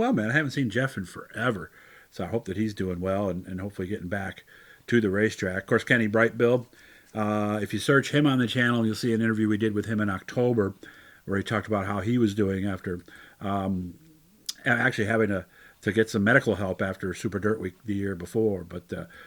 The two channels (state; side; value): identical; both; correlation 1.00